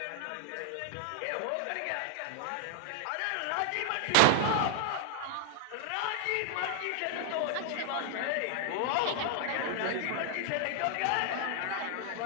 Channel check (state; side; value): different; both; correlation 0.00